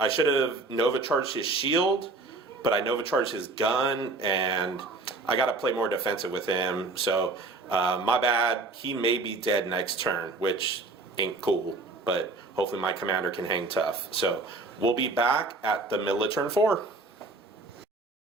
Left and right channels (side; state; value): left; quieter; 3.4 dB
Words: should have Nova Charged his shield, but I Nova Charged his gun, and I got to play more defensive with him. So, my bad. He may be dead next turn, which ain't cool, but hopefully my commander can hang tough. So, we'll be back at the middle of turn 4.